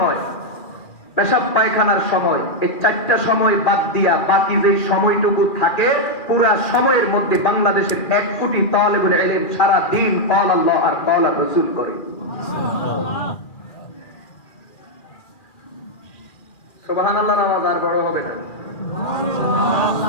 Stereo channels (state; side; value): late; right; 2.4 ms